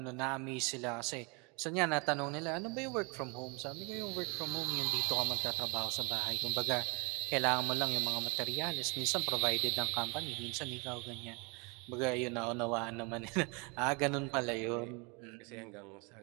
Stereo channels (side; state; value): left; quieter; 31.2 dB